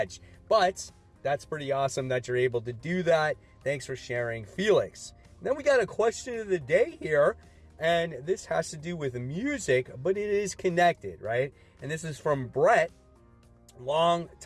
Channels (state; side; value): identical; both; correlation 1.00